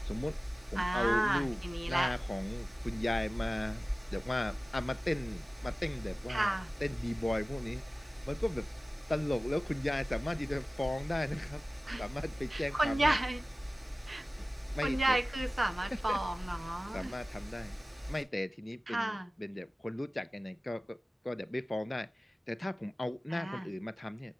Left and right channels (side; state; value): both; normal; correlation 0.97